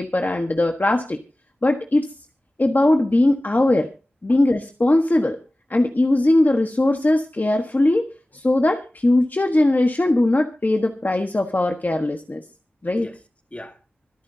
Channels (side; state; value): both; normal; correlation 0.97